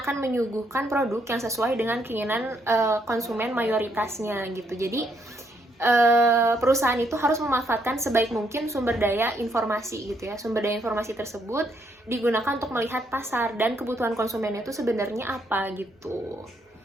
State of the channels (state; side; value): normal; both; correlation 0.73